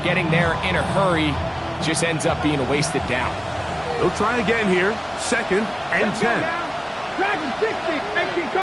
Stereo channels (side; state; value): both; identical; correlation 1.00